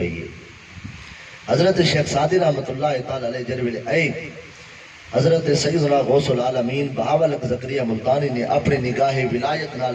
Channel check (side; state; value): both; identical; correlation 1.00